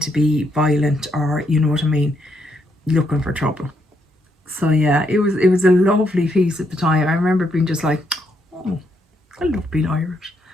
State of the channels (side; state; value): both; normal; correlation 0.76